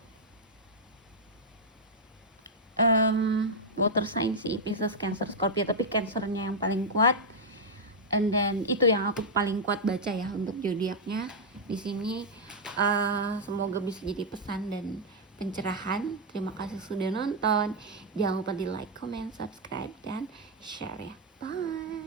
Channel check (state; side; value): normal; both; correlation -0.03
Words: water sign sih, Pisces, Cancer, Scorpio, tapi Cancernya yang paling kuat. And then itu yang aku paling kuat baca ya untuk zodiaknya di sini. Semoga bisa jadi pesan dan pencerahan. Terima kasih sudah nonton. Jangan lupa di like, comment, subscribe dan share ya.